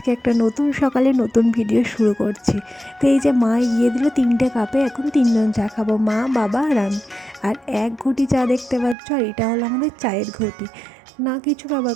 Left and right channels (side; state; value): left; drops out; at 9.0 s